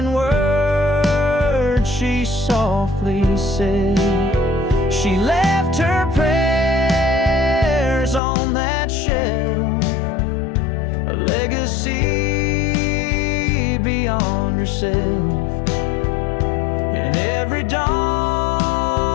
words she softly said. She left her prayers on that shelf, a legacy beyond herself. And every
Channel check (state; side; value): drops out; right; at 8.2 s